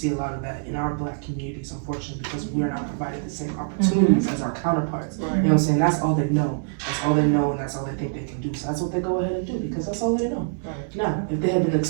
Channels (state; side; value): silent; left; digital silence